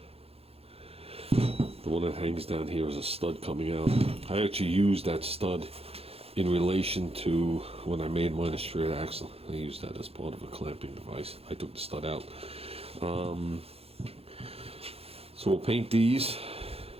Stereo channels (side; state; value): left; late; 0.29 ms